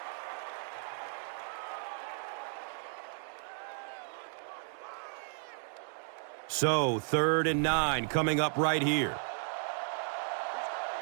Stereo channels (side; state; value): left; silent; digital silence